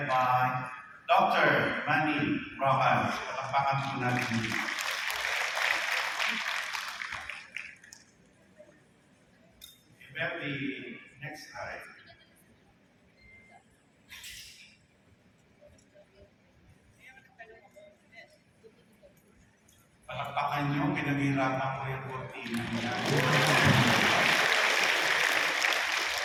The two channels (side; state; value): both; identical; correlation 1.00